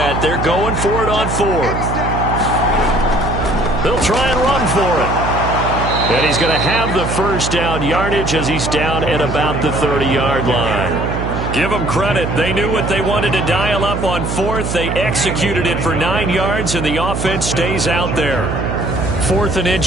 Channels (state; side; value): noise; right; hum, 3 dB below the sound